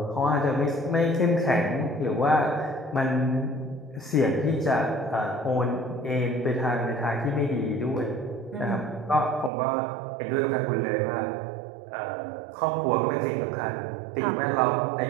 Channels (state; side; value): drops out; left; at 9.5 s